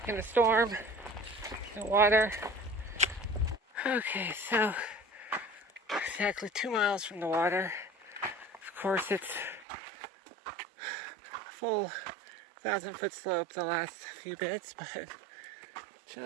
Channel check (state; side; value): drops out; left; at 9.7 s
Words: in a storm, in water. Okay, so exactly 2 miles from the water. Of course, it's a full 1,000-foot slope the last few bits, but